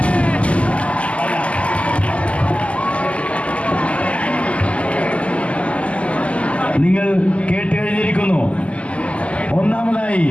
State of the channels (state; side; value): late; right; 0.062 ms